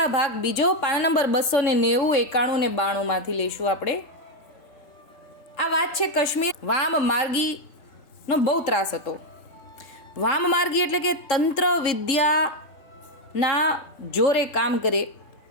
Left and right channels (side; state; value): right; late; 3.6 ms